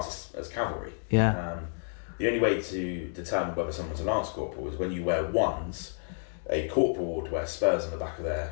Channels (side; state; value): right; silent; digital silence